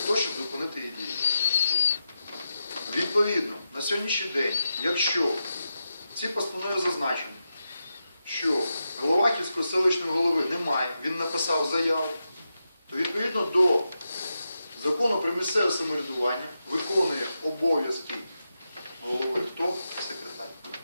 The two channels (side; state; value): both; inverted; correlation -0.88